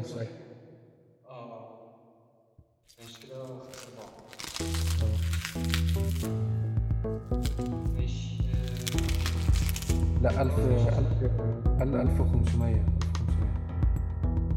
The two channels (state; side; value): identical; both; correlation 1.00